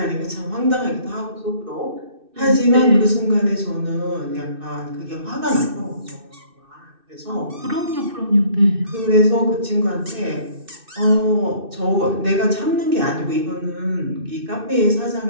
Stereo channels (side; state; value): left; late; 2.6 ms